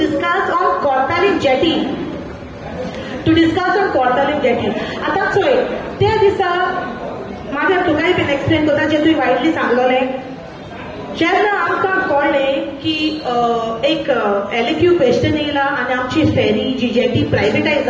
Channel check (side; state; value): both; identical; correlation 1.00